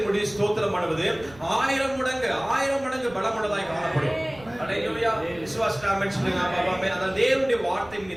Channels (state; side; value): noise; right; rumble, 22 dB below the sound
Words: மூடி ஸ்தோத்திரம் பண்ணுவது 1000 மடங்கு பலமுள்ளதாய் காணப்படும். ஹalleluya. விசுவாசிக்கிற ஆமென் சொல்லுங்க பாபா. ஆமென். அத தேவனுடைய வார்த்தை